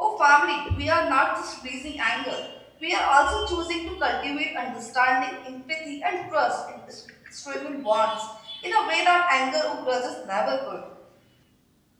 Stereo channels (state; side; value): identical; both; correlation 1.00